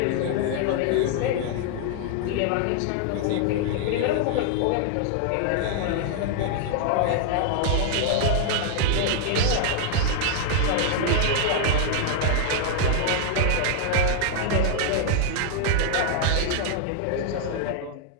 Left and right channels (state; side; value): different; both; correlation 0.00